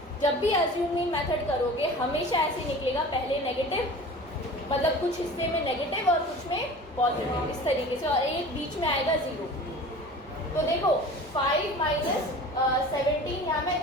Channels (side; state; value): both; normal; correlation 0.39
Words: जब भी अज्यूमिंग मेथड करोगे हमेशा ऐसे निकलेगा, पहले नेगेटिव, मतलब कुछ हिस्से में नेगेटिव और कुछ में पॉजिटिव, इस तरीके से, और एक बीच में आएगा 0। तो देखो 5 माइनस 17, यहाँ मैं